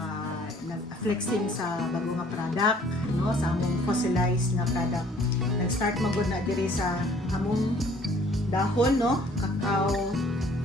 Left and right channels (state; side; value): normal; both; correlation 0.57